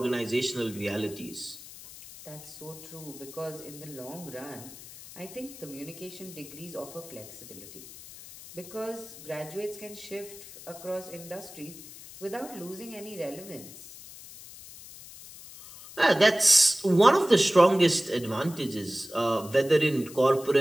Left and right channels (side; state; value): left; noise; hiss, 16 dB below the sound